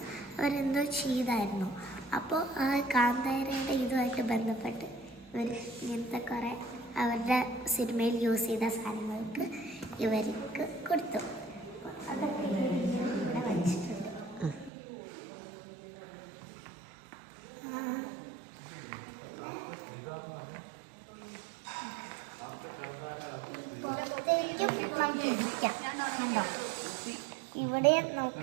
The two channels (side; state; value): left; drops out; at 14.7 s